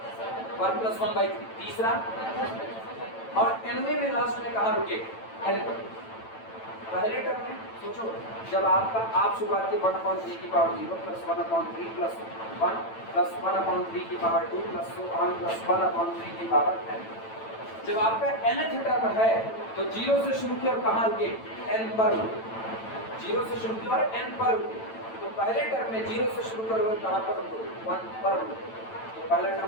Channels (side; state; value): right; late; 9.0 ms